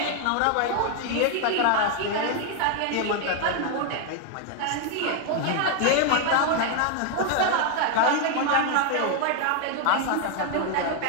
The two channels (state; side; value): different; both; correlation 0.00